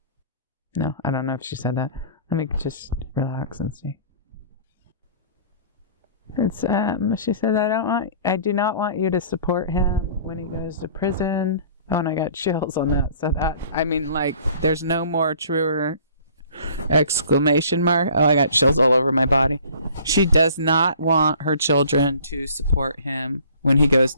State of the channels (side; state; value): both; inverted; correlation -0.50